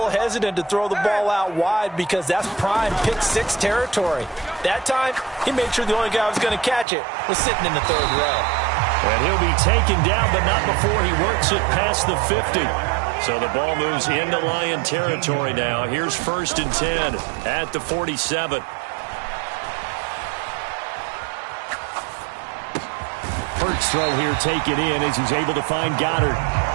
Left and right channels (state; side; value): drops out; left; at 6.9 s